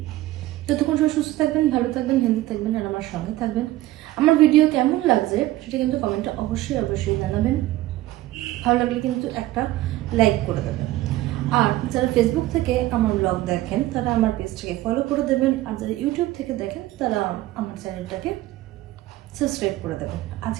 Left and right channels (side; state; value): left; quieter; 16.4 dB